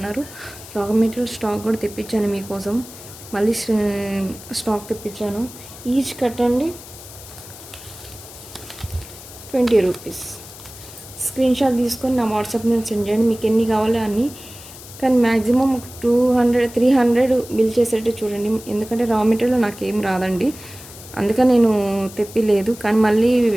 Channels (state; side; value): noise; left; hiss, 16 dB below the sound